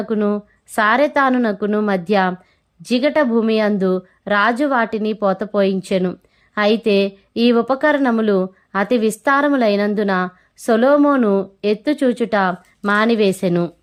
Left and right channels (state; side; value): identical; both; correlation 1.00